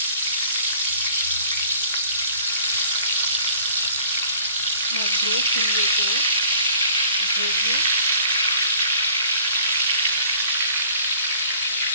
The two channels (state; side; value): inverted; both; correlation -0.52